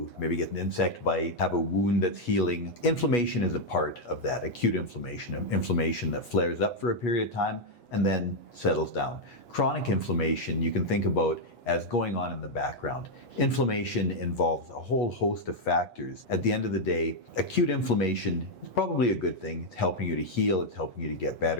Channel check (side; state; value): right; late; 8.3 ms